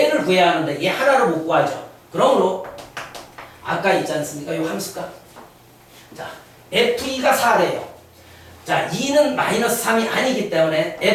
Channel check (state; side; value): identical; both; correlation 1.00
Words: 구해야 하는데 얘 하나를 못 구하죠. 그러므로 아까 있지 않습니까? 이 함수값. 자 f2가 4래요. 자 2는 마이너스 3이 아니기 때문에